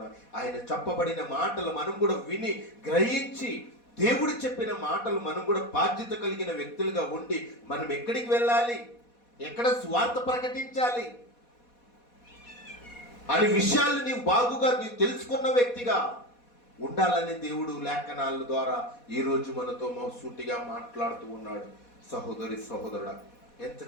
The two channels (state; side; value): late; right; 4.2 ms